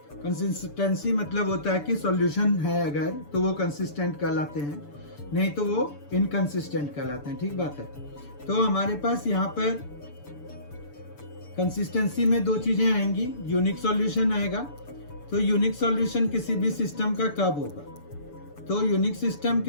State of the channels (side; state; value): right; late; 6.9 ms